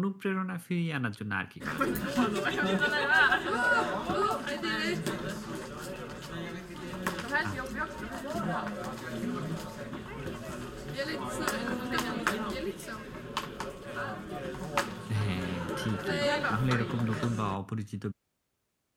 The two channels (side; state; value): both; identical; correlation 1.00